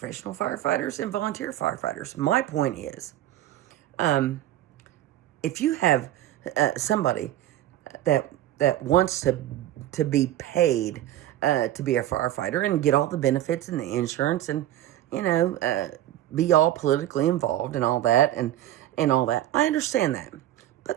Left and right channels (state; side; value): quieter; left; 13.2 dB